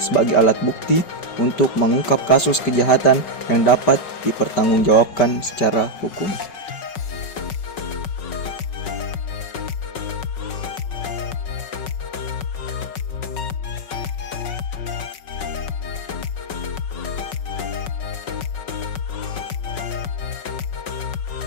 alat bukti untuk mengungkap kasus kejahatan yang dapat dipertanggungjawabkan secara hukum.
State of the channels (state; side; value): late; right; 5.4 ms